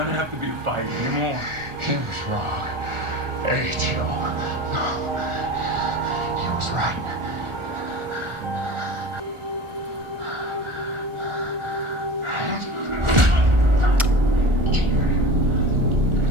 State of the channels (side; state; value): left; late; 1.4 ms